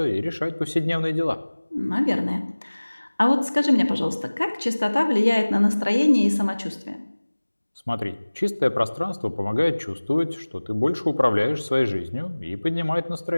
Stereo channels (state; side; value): inverted; both; correlation -1.00